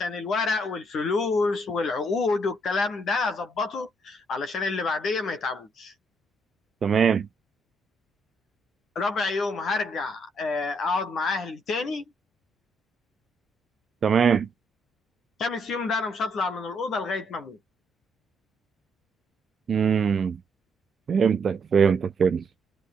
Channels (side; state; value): both; normal; correlation 0.73